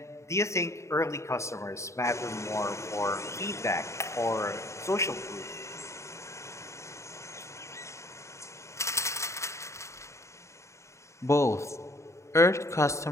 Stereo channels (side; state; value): right; late; 0.14 ms